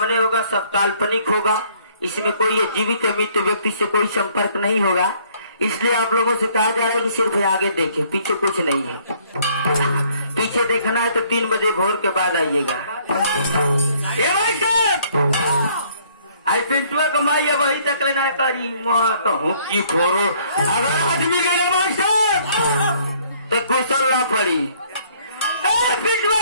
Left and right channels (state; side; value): inverted; both; correlation -0.62